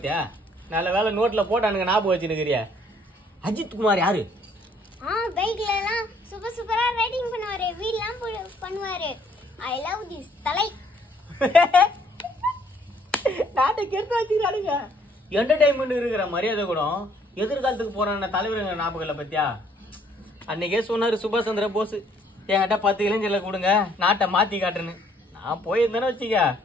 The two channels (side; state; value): both; normal; correlation 0.63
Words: நல்ல வேலை நோட்ல போட்டானுங்க ஞாபகம் வச்சுருக்கிறிய. அஜித் குமார் யாரு? பைக்ல எல்லாம் சூப்பரா ரைடிங் பண்ணுவாரு, வீல்லாம் பண்ணுவாரு. ஐ லவ் திஸ் தலை. நாட்டை கெடுத்து வச்சுக்கிறானுங்க. என்டர்டைன்மெண்ட் இருக்கிற மரியாதை கூட எதிர்காலத்துக்கு போறான தலைவருங்க ஞாபகம்ல பத்தியா? அன்னைக்கே சொன்னாரு சுபாஷ் சந்திர போஸ், என்கிட்ட 10 இளைஞர்ல கொடுங்க நாட்டை மாத்தி காட்டுன்னு. நான் போயிருந்தேன்னு வச்சுக்க